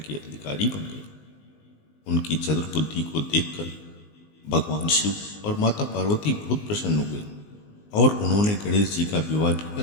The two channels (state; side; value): late; right; 19 ms